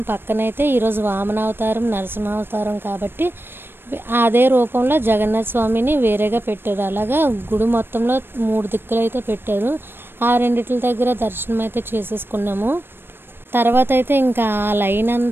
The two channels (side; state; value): left; late; 0.10 ms